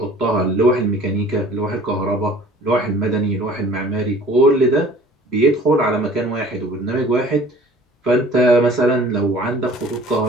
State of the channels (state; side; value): normal; both; correlation 0.49